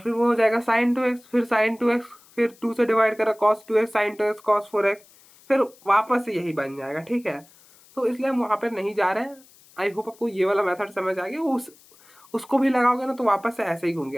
वो हो जाएगा sin 2x, फिर sin 2x, फिर 2 से डिवाइड करा cos 2x sin 2x cos 4x, फिर वापस से यही बन जाएगा, ठीक है। तो इसलिए हम वहाँ पर नहीं जा रहे हैं। आई होप आपको ये वाला मेथड समझ आ गया। उसको भी लगाओगे ना तो वापस से ऐसे ही घूम के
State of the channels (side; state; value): left; noise; hiss, 27 dB below the sound